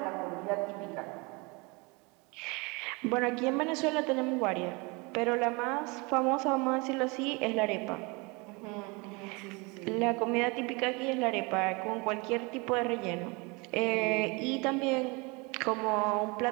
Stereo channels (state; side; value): quieter; left; 28.1 dB